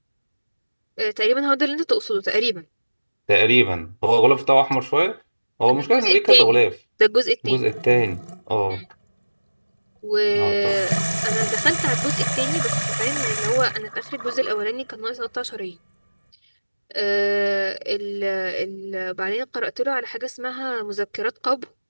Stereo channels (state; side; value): inverted; both; correlation -1.00